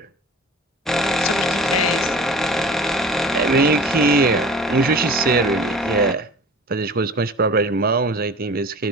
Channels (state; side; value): normal; both; correlation 0.41